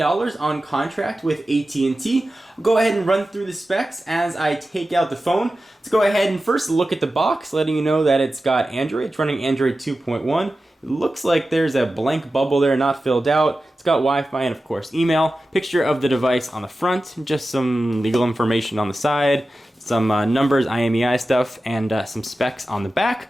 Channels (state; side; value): normal; both; correlation 0.94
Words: on contract with AT&T. I'll go ahead and run through the specs as I take out the phone. Let's go ahead and first look at the box, letting you know that it's got Android. It's running Android 2.1. It looks like there's a blank bubble there, not filled out. It's got Wi-Fi and of course email. Picture of the device on the front, just some legal information on the side, some numbers, IMEI stuff, and some specs on the back.